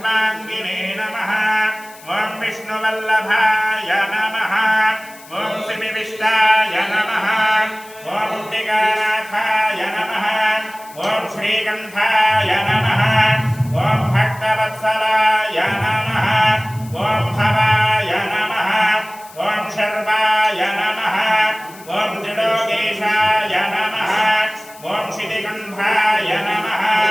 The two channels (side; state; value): left; noise; hiss, 21 dB below the sound